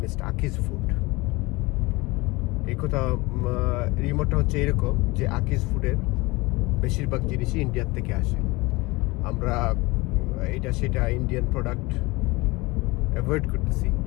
Aki's food. এই কথা রিমোটটা হচ্ছে এরকম যে আকিজ ফুডের বেশিরভাগ জিনিসই ইন্ডিয়ার থেকে আসে। আমরা এটা সেটা ইন্ডিয়ান প্রোডাক্ট অ্যাভয়েড করতেছি,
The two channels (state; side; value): quieter; right; 23.1 dB